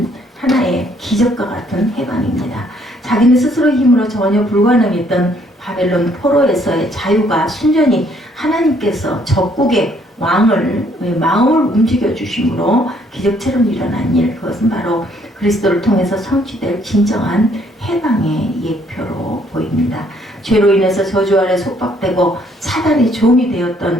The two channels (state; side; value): normal; both; correlation 0.65